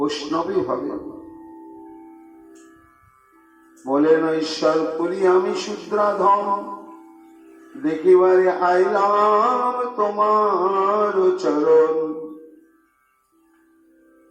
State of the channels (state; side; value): identical; both; correlation 1.00